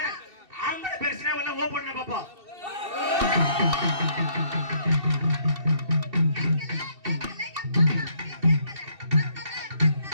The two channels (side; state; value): left; late; 2.7 ms